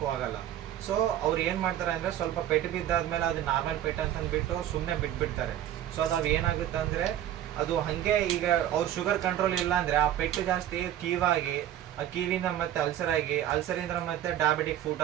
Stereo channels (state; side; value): quieter; left; 11.7 dB